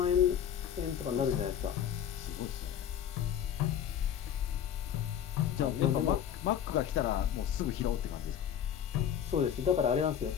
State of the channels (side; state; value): right; quieter; 9.3 dB